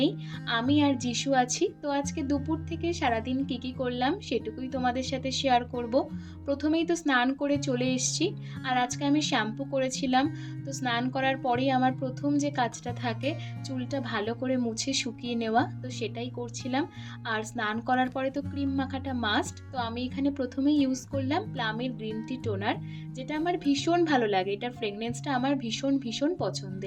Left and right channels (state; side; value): identical; both; correlation 1.00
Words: আমি আর যিশু আছি। তো আজকে দুপুর থেকে সারাদিন কী করলাম সেটুকুই তোমাদের সাথে শেয়ার করব। প্রথমেই তো স্নান করে চলে এসেছি, আর আজকে আমি শ্যাম্পু করেছিলাম। তো স্নান করার পরেই আমার প্রথম যে কাজটা থাকে চুলটা ভালো করে মুছে শুকিয়ে নেওয়া, তো সেটাই করছিলাম। আর স্নান করার পরে তো ক্রিম মাখাটা মাস্ট। তো আমি এখানে প্রথমেই ইউজ করলাম প্লামের গ্রিন টি টোনার, যেটা আমার ভীষণ ভালো লাগে। এটার ফ্রেগনেন্সটা আমার ভীষণ ভীষণ